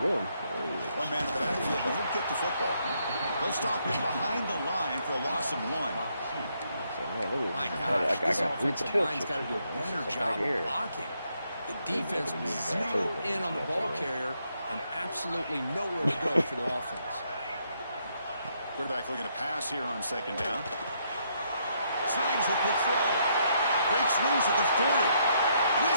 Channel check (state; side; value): inverted; both; correlation -0.74